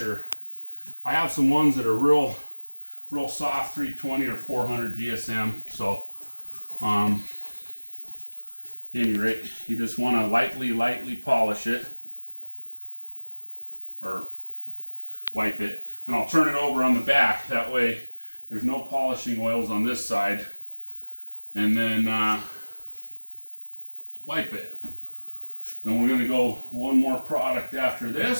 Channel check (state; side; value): inverted; both; correlation -1.00